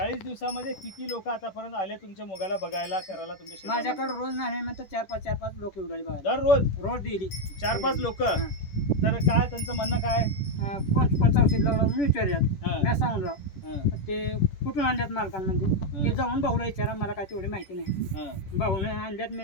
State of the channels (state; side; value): late; right; 10 ms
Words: दिवसामध्ये किती लोक आतापर्यंत आले तुमच्या मुगाला बघायला, करायला तुमच्या शेतामध्ये? माझ्याकडे रोज नाही म्हणतात 4-5 लोक उडाली बघायला. दररोज रोज डेली 4-5 लोक. तर काय त्यांचं म्हणणं काय? कोणतं औषध लावलं म्हणून विचारल्यात. हा. मी सांगून हा, ते कुठून आणल्यात मालकांमध्ये हा. ते जाऊन भाऊला विचारा, मला काय तेवढी माहिती नाही. हा. भाऊने आणल्यात,